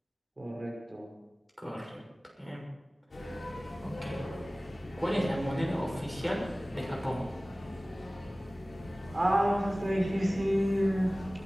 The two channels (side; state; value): both; normal; correlation 0.98